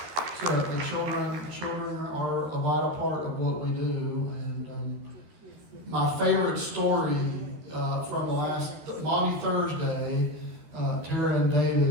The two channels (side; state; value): left; late; 13 ms